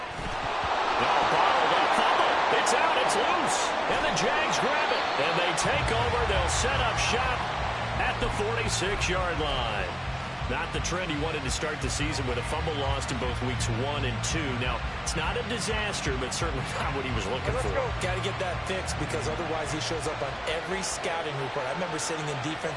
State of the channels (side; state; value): both; identical; correlation 1.00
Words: Now bottled up fumble. It's out. It's loose. And the Jags grab it. And they take over. They'll set up shop at the 46-yard line. Not the trend he wanted to start the season with a fumble lost in both weeks 1 and 2. Now, it's not a disaster, but certainly not what he was looking for. Got to get that fixed because otherwise he shows up on every scouting report. I remember sitting in